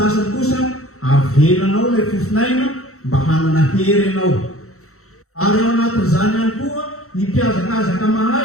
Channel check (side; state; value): right; late; 0.64 ms